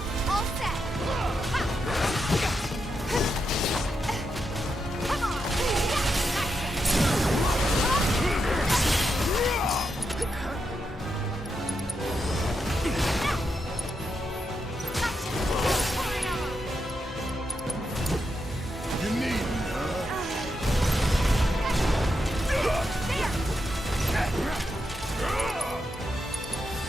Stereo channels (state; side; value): normal; both; correlation 0.84